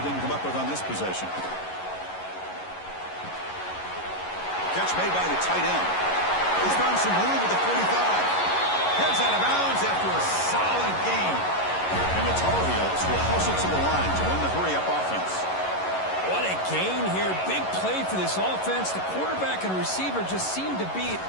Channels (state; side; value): late; right; 11 ms